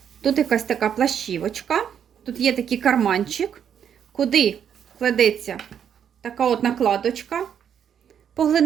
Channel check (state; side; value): quieter; left; 8.5 dB